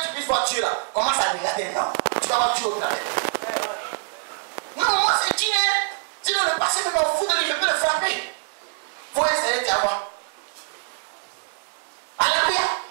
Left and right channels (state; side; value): silent; left; 62 dB below the other